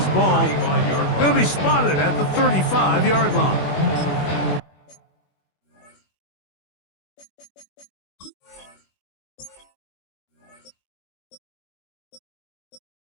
ball going to be spotted at the 35-yard line.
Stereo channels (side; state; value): right; late; 21 ms